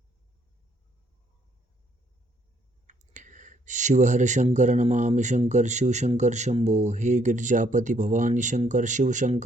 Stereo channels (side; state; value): both; normal; correlation 0.68